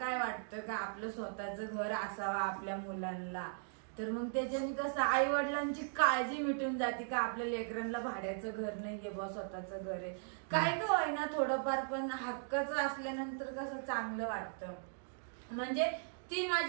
वाटतं का आपलं स्वतःचं घर असावं आपल्या मुलांना. तर मग त्याच्याने कसं आई वडिलांची काळजी मिटून जाते का आपल्या लेकरांना भाड्याचं घर नाहीये बा, स्वतःचं घर आहे. काय का होईना थोडंफार, पण हक्काचं असल्यानंतर कसं चांगलं वाटतं. म्हणजे ती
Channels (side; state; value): left; silent; digital silence